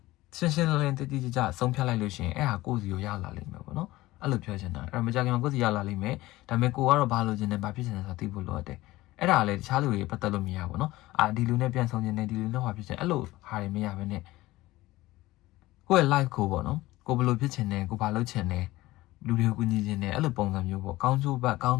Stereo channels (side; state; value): right; quieter; 18.1 dB